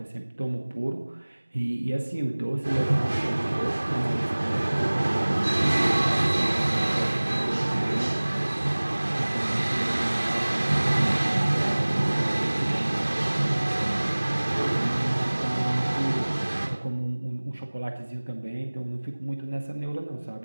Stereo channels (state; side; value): inverted; both; correlation -1.00